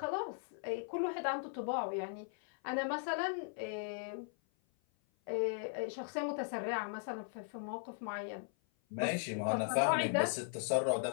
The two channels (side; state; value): right; silent; 52 dB below the other